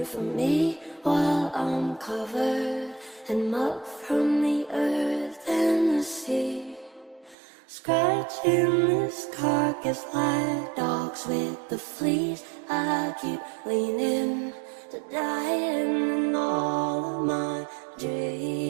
for me while I'm covered in muck from the earth and the sea. Scratching this carcass like dogs with the fleas. I keep leaning to dying in all of my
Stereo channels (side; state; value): left; drops out; at 7.4 s